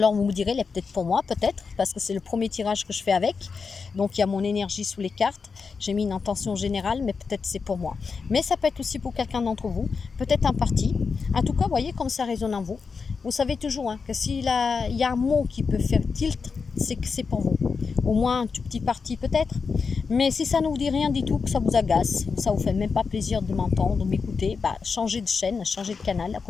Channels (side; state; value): right; quieter; 5.1 dB